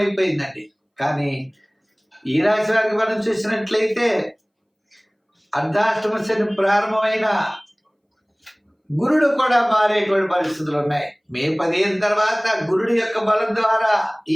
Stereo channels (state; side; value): identical; both; correlation 1.00